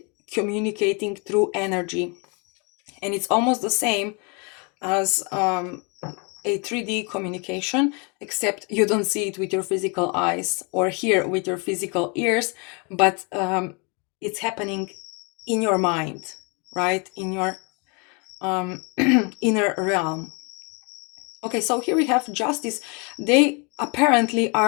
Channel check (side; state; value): right; quieter; 32.5 dB